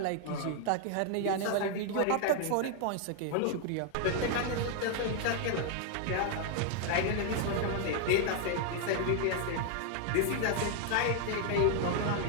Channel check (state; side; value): different; both; correlation 0.00